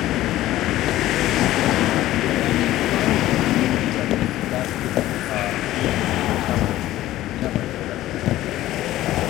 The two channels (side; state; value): right; quieter; 15.0 dB